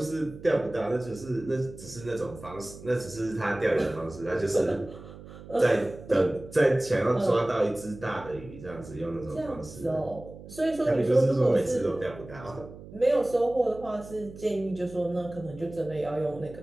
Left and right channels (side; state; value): right; noise; hum, 16 dB below the sound